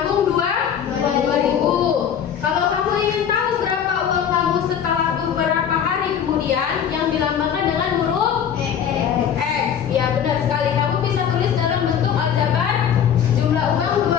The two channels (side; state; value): right; quieter; 8.5 dB